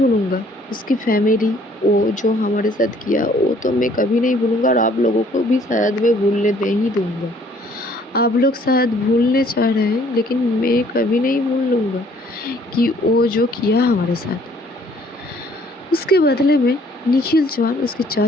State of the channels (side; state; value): both; normal; correlation 0.60